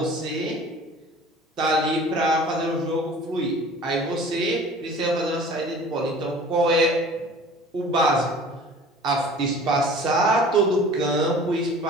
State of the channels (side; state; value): both; normal; correlation 0.45